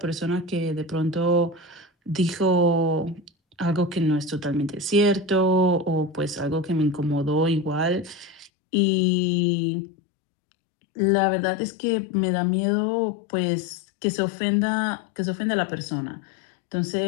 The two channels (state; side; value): drops out; right; at 8.5 s